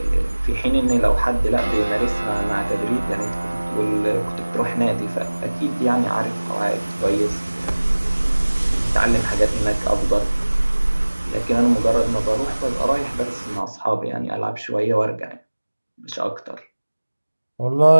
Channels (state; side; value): inverted; both; correlation -1.00